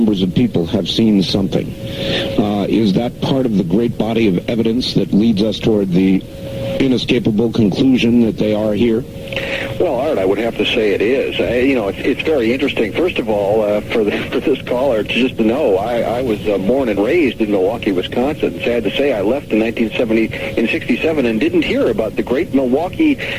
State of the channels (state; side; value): identical; both; correlation 1.00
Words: of people have seen something. Is that part of the great body of evidence that leads us toward the inescapable conclusion that they are here? Well, Art, I would have to say it is. It's very interesting. First of all, for this caller, just to know, I was born and raised in Milwaukee, Wisconsin. Sad to say, I left in 1967 and didn't hear about the great Milwaukee